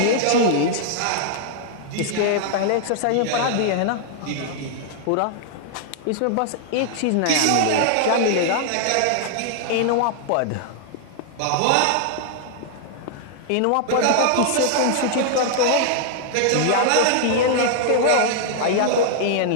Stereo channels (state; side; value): different; both; correlation -0.01